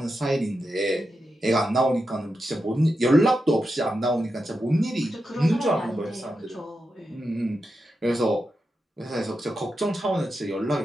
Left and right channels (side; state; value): both; normal; correlation 0.88